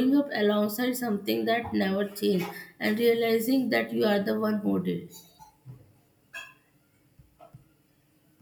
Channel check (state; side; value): identical; both; correlation 1.00